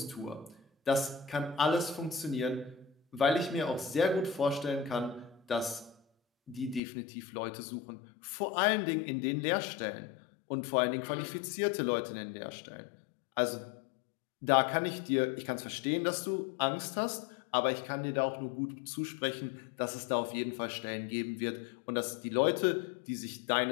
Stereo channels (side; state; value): right; drops out; at 6.8 s